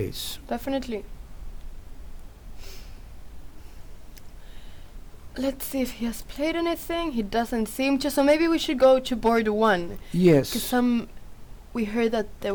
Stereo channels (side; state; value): both; identical; correlation 1.00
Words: Definitely. Let's see if he has played anything. He doesn't seem to. So maybe we should go to board 1. Yes. Because we heard that there